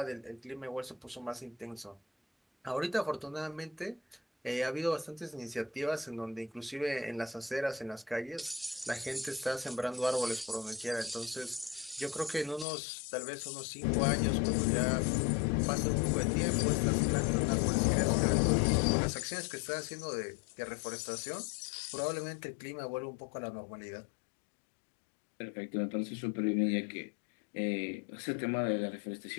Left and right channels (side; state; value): right; drops out; at 12.7 s